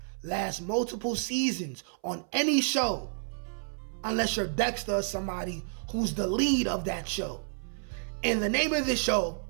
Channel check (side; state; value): left; silent; 58 dB below the other